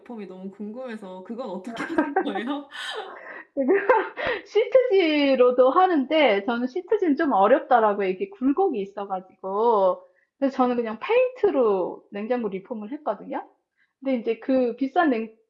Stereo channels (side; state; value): both; identical; correlation 1.00